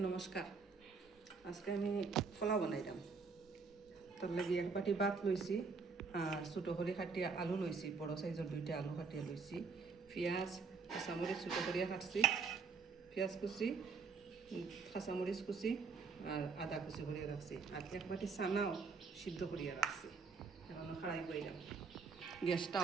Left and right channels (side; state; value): left; quieter; 5.0 dB